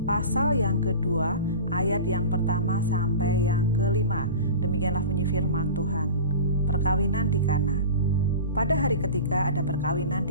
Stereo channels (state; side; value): inverted; both; correlation -0.33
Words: pasal yang kedua, ayat yang pertama sampai yang kelima. Demikianlah bunyi firman Tuhan. Perkawinan di Kana. Pada hari ketiga ada perkawinan